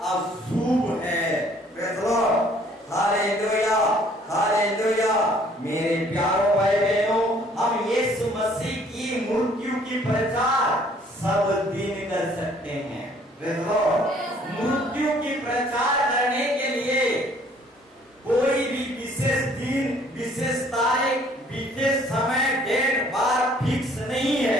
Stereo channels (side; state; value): both; normal; correlation 0.59